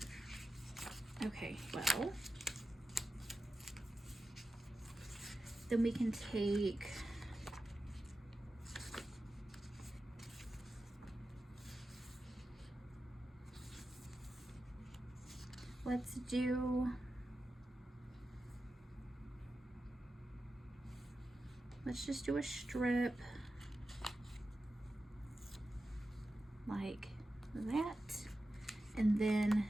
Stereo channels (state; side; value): normal; both; correlation 0.92